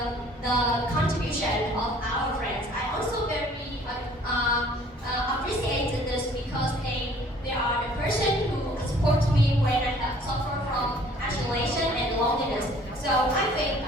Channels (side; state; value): both; normal; correlation 0.55